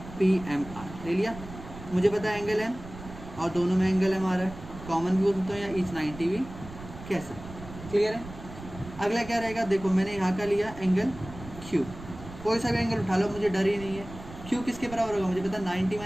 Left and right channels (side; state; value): right; noise; rumble, 14 dB below the sound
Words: PMR ले लिया। मुझे पता है एंगल M और दोनों में एंगल M आ रहा है, कॉमन भी हो सकता है या ईच 90 भी कैसे। क्लियर है? अगला क्या रहेगा, देखो मैंने यहाँ का लिया एंगल Q, कोई सा भी एंगल उठा लो, मुझे डर ही नहीं है। Q किसके बराबर होगा, मुझे पता 90